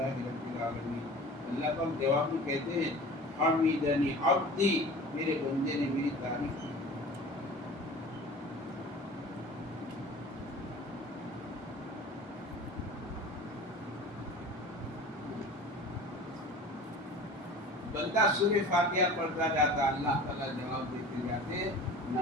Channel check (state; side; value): normal; both; correlation 0.40